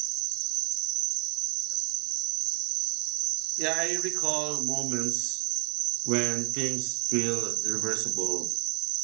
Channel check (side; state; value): left; quieter; 32.7 dB